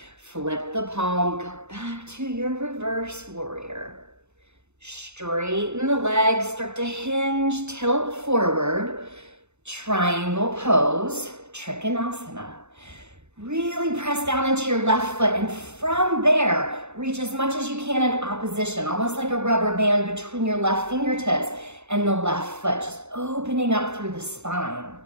Flip the palm, go back to your reverse warrior. Straighten the legs, start to hinge, tilt forward. Triangle pose, Trikonasana. Really press down into your left foot, and from there, reach as much as you can in opposition, almost like a rubber band between your left fingertips and the left foot, just opening up through the spine.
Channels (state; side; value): late; left; 0.82 ms